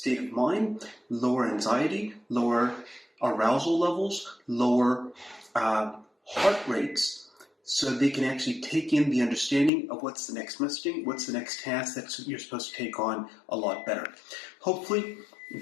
of mind, lower anxiety, lower arousal levels, lower heart rates, so they can actually take in the understanding of what's the next messaging, what's the next task that you're supposed to take on a lot better. Hopefully,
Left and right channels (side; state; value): right; drops out; at 9.7 s